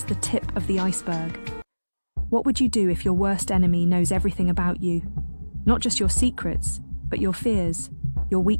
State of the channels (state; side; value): inverted; both; correlation -1.00